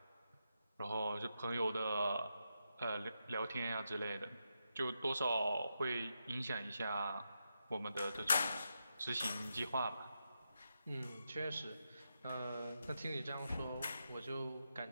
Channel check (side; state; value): both; inverted; correlation -0.85